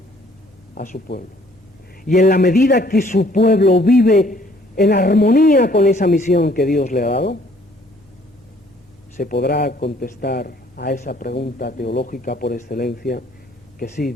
a su pueblo. Y en la medida que su pueblo vive en armonía con esa misión que Dios le ha dado, se podrá contestar a esa pregunta teológica por excelencia, que sí,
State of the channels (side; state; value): both; normal; correlation 0.61